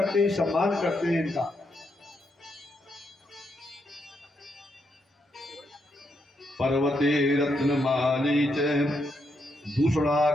हैं, सम्मान करते हैं इनका। पर्वते रत्नमाली च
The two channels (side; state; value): both; normal; correlation 0.79